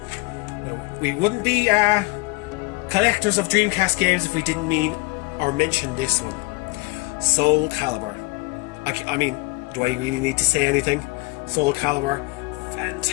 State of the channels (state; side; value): quieter; right; 24.8 dB